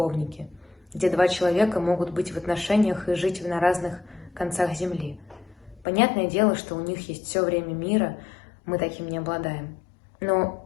где два человека могут быть в отношениях и жить на разных концах земли. Понятное дело, что у них есть все время мира, мы таким не обладаем. Но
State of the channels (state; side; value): drops out; right; at 5.9 s